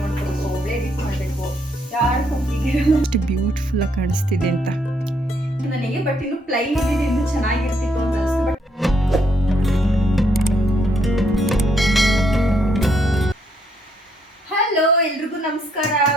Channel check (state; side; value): normal; both; correlation 0.72